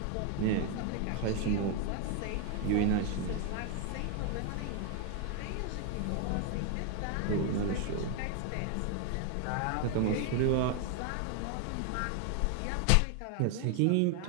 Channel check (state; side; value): different; both; correlation 0.01